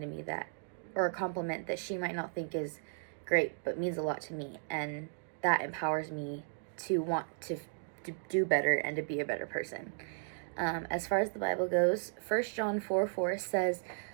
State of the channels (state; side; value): silent; left; digital silence